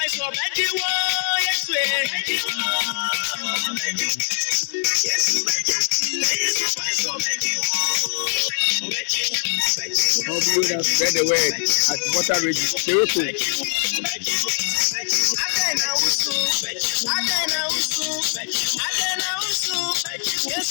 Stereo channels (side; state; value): right; silent; digital silence